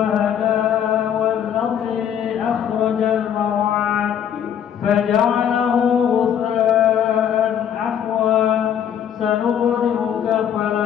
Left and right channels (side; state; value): right; quieter; 9.1 dB